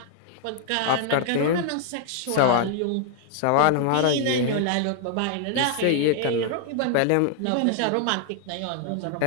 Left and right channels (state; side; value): different; both; correlation 0.00